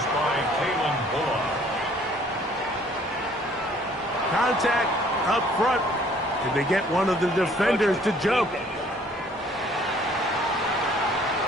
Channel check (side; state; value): both; normal; correlation 0.58